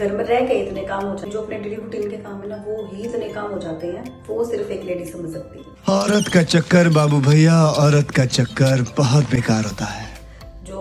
में रह के इतने काम हो जाते हैं, जो अपने डेली रूटीन के काम है ना, वो ही इतने काम हो जाते हैं, वो सिर्फ एक लेडी समझ सकती है। औरत का चक्कर बाबू भैया, औरत का चक्कर बहुत बेकार होता है।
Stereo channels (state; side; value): identical; both; correlation 1.00